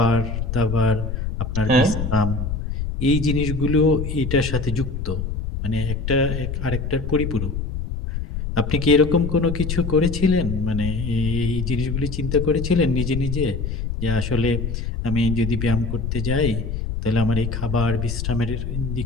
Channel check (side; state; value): left; noise; rumble, 3 dB below the sound